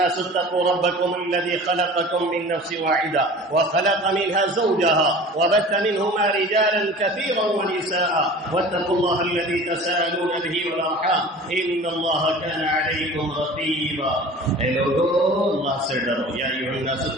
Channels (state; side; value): normal; both; correlation 0.41